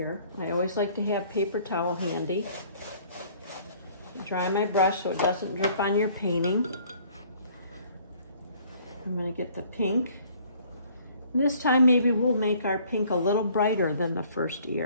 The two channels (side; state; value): both; inverted; correlation -0.57